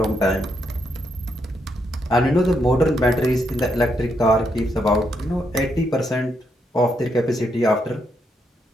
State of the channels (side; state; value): both; normal; correlation 0.78